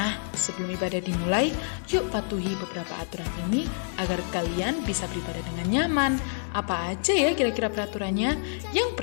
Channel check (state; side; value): silent; right; digital silence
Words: sebelum ibadah dimulai, yuk patuhi beberapa aturan ini agar kalian bisa beribadah dengan nyaman. Apa aja ya kira-kira peraturannya? Yang